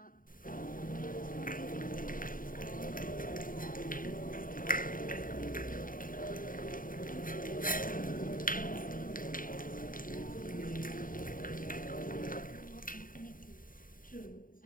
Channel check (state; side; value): late; right; 0.40 ms